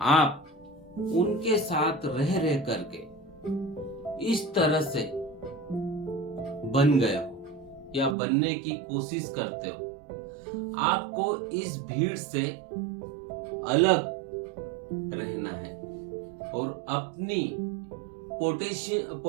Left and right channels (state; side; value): drops out; left; at 8.2 s